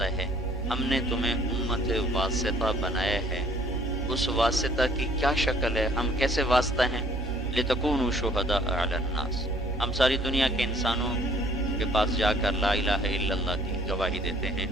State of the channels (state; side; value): normal; both; correlation 0.59